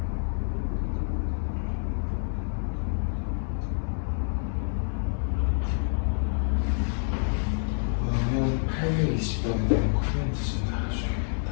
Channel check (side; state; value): right; silent; digital silence